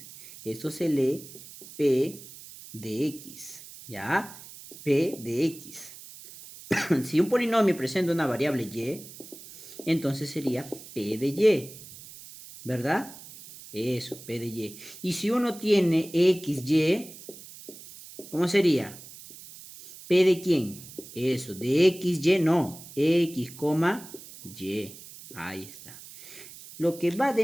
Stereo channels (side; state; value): right; noise; hiss, 16 dB below the sound